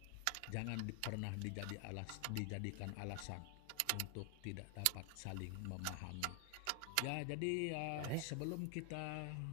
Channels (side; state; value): both; different; correlation 0.00